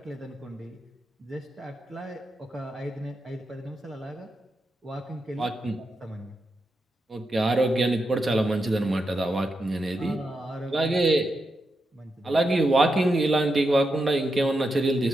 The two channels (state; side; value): normal; both; correlation 0.86